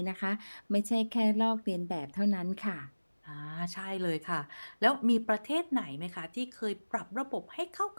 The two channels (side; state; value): both; inverted; correlation -1.00